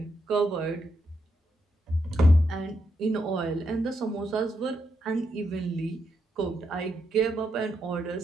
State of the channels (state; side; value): normal; both; correlation 0.81